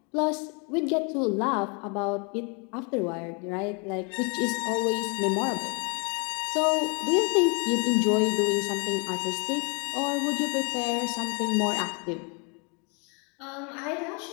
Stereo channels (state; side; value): quieter; right; 34.3 dB